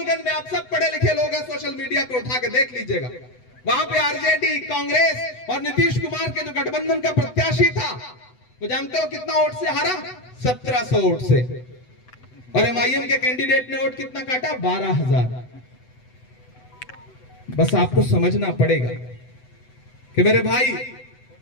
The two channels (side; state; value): right; late; 8.0 ms